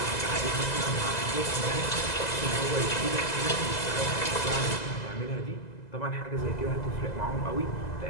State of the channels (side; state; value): right; late; 2.0 ms